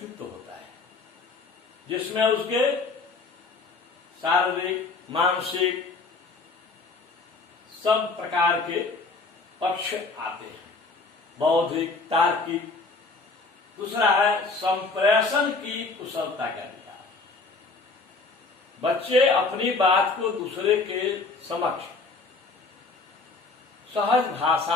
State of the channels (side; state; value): right; quieter; 3.8 dB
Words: होता है जिसमें उसके शारीरिक, मानसिक सब प्रकार के पक्ष आते हैं, बौद्धिक, तार्किक। दूसरा है संप्रेषण की कुशलता का विकास। बच्चे अपनी बात को दूसरे के समक्ष सहज